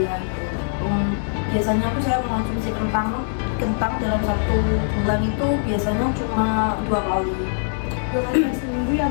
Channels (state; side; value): silent; right; digital silence